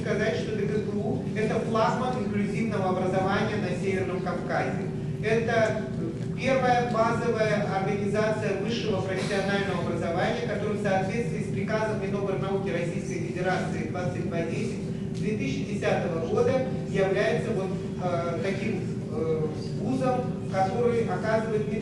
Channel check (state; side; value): identical; both; correlation 1.00